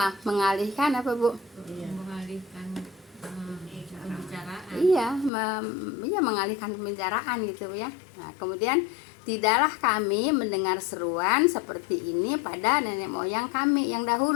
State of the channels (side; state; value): right; drops out; at 5.3 s